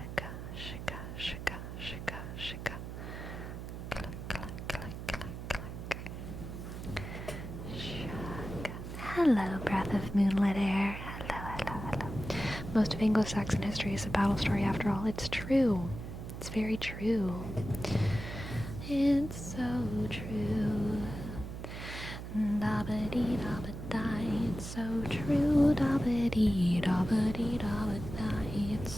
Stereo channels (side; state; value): right; noise; hum, 8 dB below the sound